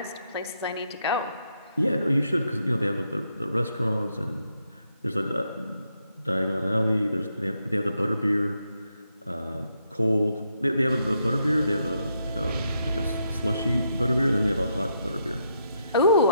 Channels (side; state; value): both; inverted; correlation -0.79